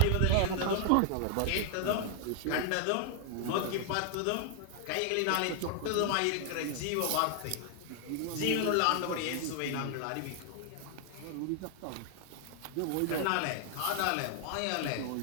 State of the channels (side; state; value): both; different; correlation 0.00